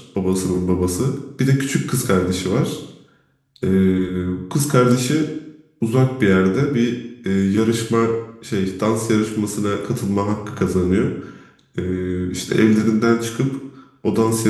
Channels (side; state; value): both; identical; correlation 1.00